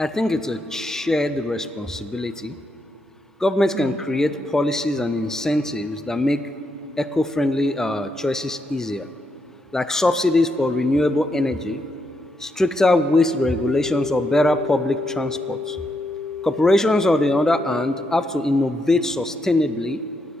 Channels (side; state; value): both; normal; correlation 0.81